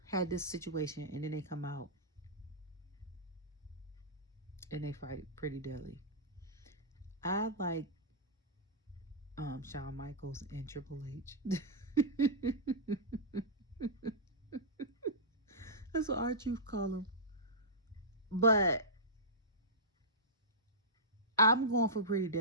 had this situation, and then they come out and they fight Pretty Deadly. I like Shawn Michaels and Triple H. That's what our truth call them. But I'm going for Pretty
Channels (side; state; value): both; normal; correlation -0.15